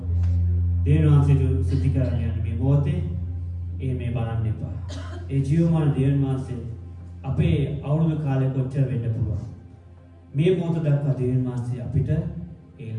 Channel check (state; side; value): identical; both; correlation 1.00